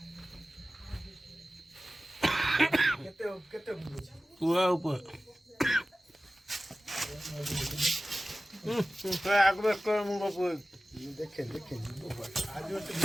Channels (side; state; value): both; normal; correlation 0.96